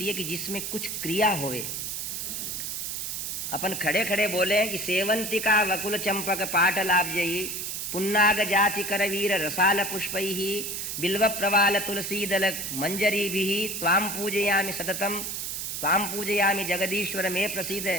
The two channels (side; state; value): right; noise; hiss, 4 dB below the sound